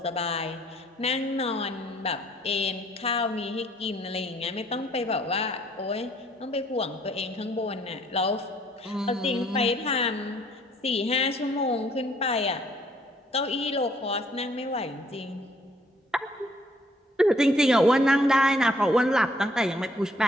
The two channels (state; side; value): normal; both; correlation 0.63